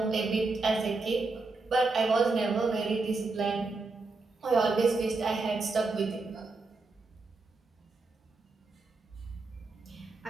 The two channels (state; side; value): quieter; left; 3.8 dB